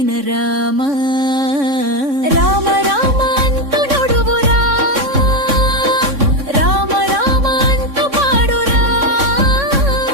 రామ, రామ రామ అంటూ నడువురా, రామ రామ అంటూ పాడురా,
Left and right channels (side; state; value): left; late; 3.6 ms